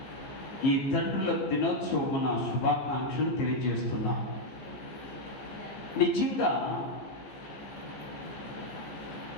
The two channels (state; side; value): late; right; 14 ms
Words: ఈ తండ్రుల దినోత్సవమున శుభాకాంక్షలు తెలియజేస్తున్నా. నిజంగా